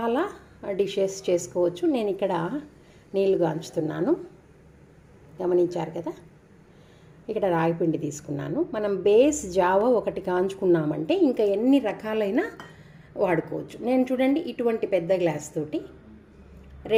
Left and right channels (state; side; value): identical; both; correlation 1.00